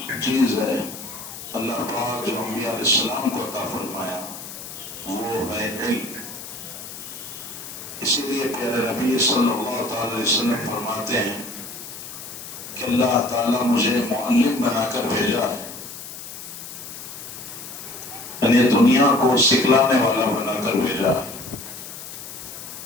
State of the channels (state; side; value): noise; left; hiss, 11 dB below the sound